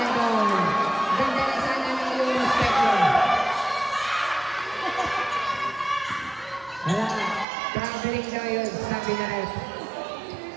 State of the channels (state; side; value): drops out; left; at 7.5 s